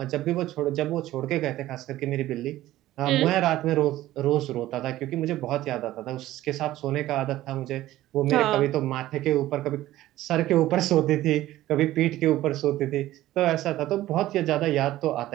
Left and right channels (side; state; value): left; quieter; 15.2 dB